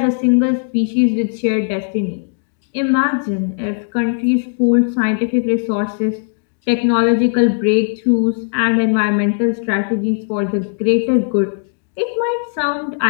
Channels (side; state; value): right; silent; digital silence